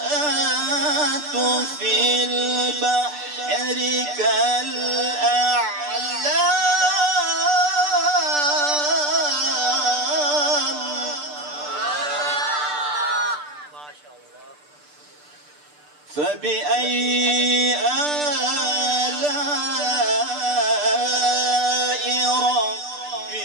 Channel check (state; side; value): late; left; 6.8 ms